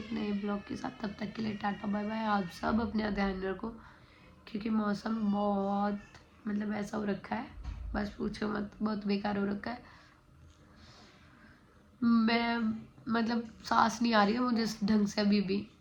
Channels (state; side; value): identical; both; correlation 1.00